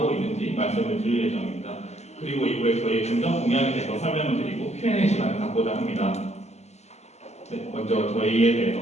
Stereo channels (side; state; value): right; late; 0.32 ms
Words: 있는지 말씀을 드릴 예정입니다. 그리고 이후에 저희의 중점 공약에 대해서 설명을 드리고 Q&A 시간을 갖고자 합니다. 네, 먼저 저희에 대해서